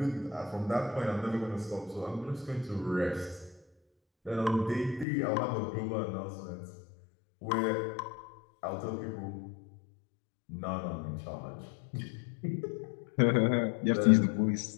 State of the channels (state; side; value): drops out; right; at 5.1 s